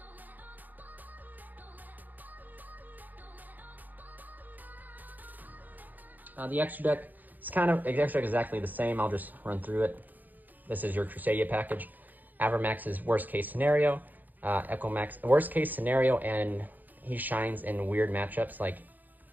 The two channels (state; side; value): late; left; 0.084 ms